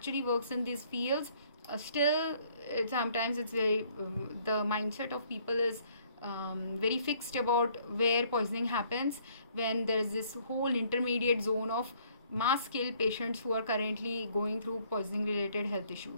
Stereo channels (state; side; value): inverted; both; correlation -0.62